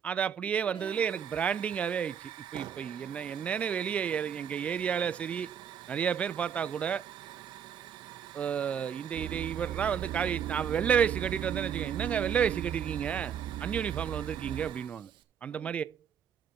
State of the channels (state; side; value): quieter; left; 8.0 dB